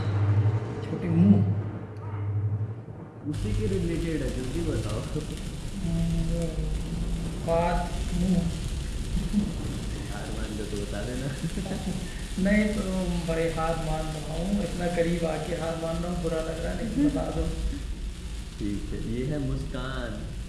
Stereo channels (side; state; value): both; identical; correlation 1.00